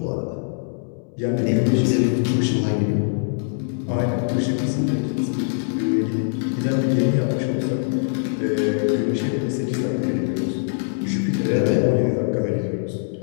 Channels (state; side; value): silent; right; 64 dB below the other